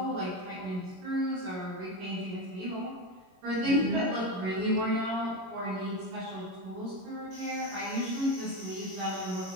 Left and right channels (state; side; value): late; left; 22 ms